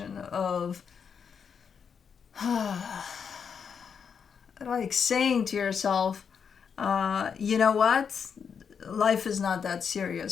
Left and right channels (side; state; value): right; quieter; 6.7 dB